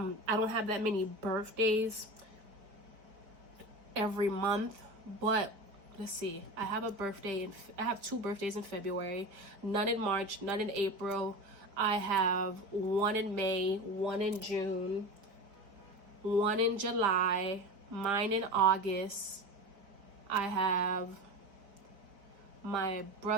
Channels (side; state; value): left; late; 4.6 ms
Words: don't have that many birthdays every month, but let's see. I have a birthday, I have 2 birthdays in February, none in March, none in April. I have 1 in May, 1 in June, 1 in July, mine in August. I have my